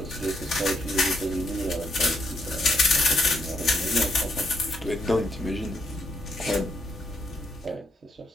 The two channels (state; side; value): normal; both; correlation 0.76